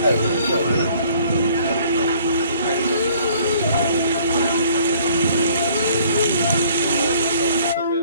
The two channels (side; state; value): both; inverted; correlation -0.57